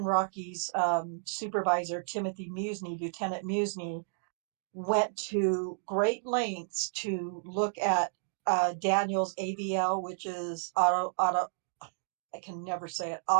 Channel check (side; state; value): left; silent; digital silence